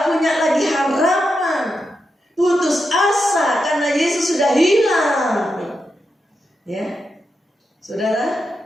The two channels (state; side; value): normal; both; correlation 0.86